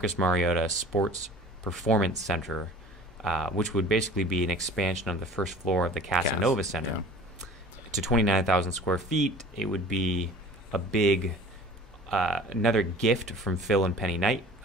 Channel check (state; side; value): normal; both; correlation 0.44